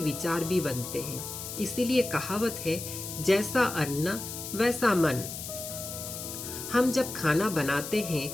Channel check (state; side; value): noise; left; hiss, 8 dB below the sound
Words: भी बनते हैं। इसीलिए कहावत है, जैसा अन्न वैसा मन। हम जब खाना बनाते हैं,